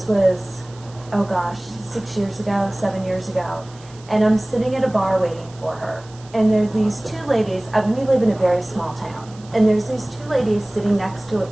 was, oh gosh, 6 years ago, 7 years ago. And I'm sitting at a bar waiting for her. And there's these two ladies. We live in a very small town. And there's these two ladies sitting next to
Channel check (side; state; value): right; noise; hiss, 24 dB below the sound